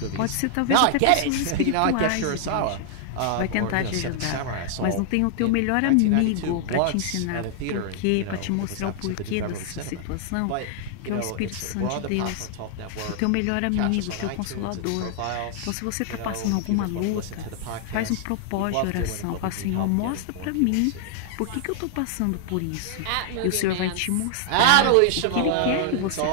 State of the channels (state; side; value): different; both; correlation 0.00